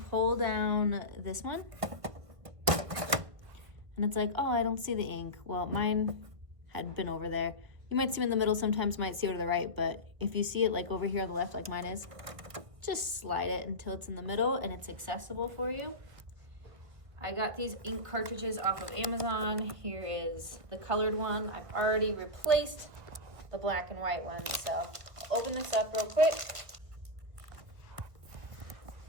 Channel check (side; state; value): left; late; 1.6 ms